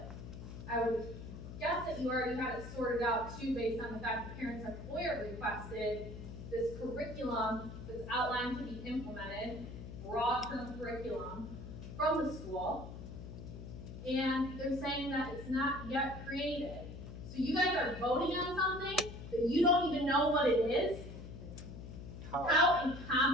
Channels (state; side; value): noise; left; hum, 11 dB below the sound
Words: I would guess that you already had it sorted out too, based on the fact that parents have FOIA requested this curriculum that's outlined to be implemented, broad-term curriculum from the school, and they're saying that it's not yet created. So you guys are voting on something that you don't even know what it is? How